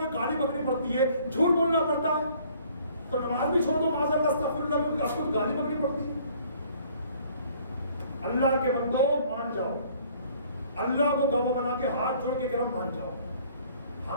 کہ گالی پکڑنی پڑتی ہے، جھوٹ بولنا پڑتا ہے، تو نماز بھی چھوڑ دو، معاذ اللہ استغفر اللہ، میں آپ کو گالی پکڑنی پڑتی ہے. اللہ کے بندو مان جاؤ، اللہ کو گواہ بنا کے ہاتھ جوڑ کے گرم مان جاؤ.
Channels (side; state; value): both; inverted; correlation -0.58